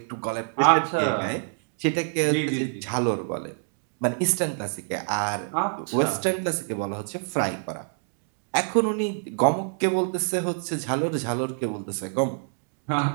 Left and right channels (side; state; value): left; silent; 61 dB below the other